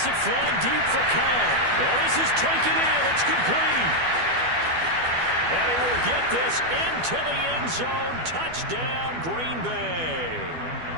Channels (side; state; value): left; late; 12 ms